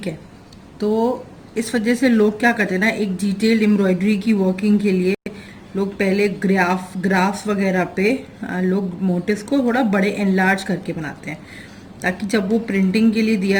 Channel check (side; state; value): both; identical; correlation 1.00